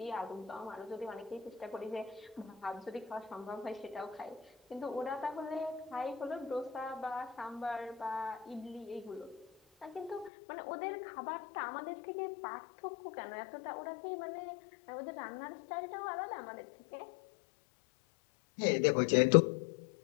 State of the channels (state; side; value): drops out; right; at 10.3 s